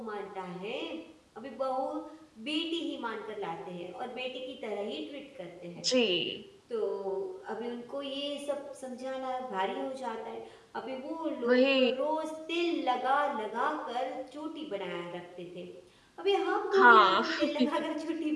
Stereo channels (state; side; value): identical; both; correlation 1.00